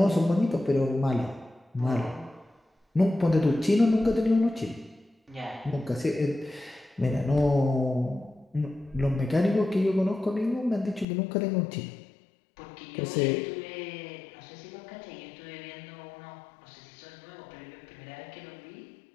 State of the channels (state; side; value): drops out; right; at 11.1 s